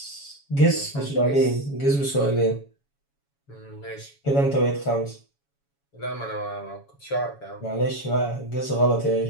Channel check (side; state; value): right; late; 7.2 ms